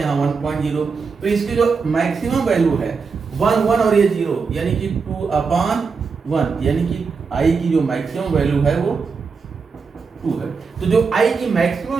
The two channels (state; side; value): quieter; left; 5.1 dB